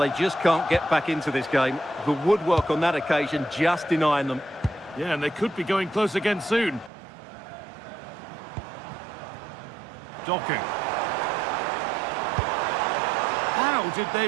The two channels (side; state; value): left; drops out; at 6.9 s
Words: just can't get back into this game. The woodwork on that occasion just denying them. Yeah, and they could be going close again soon. Doku. How did they